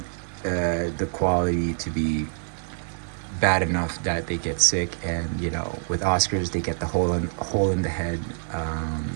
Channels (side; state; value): left; silent; 61 dB below the other